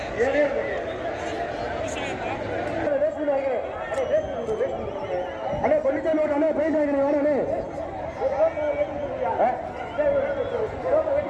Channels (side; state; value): both; identical; correlation 1.00